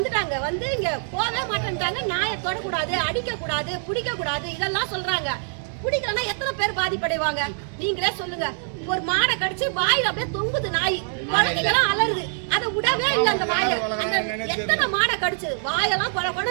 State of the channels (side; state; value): left; silent; digital silence